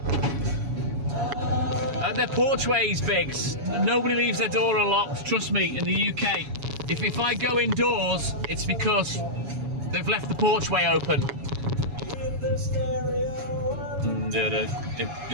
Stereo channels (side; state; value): left; late; 7.2 ms